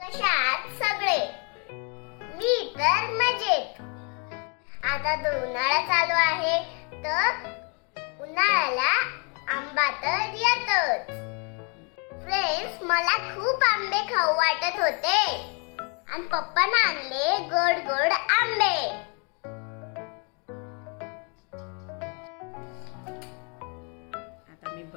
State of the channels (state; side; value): quieter; right; 36.3 dB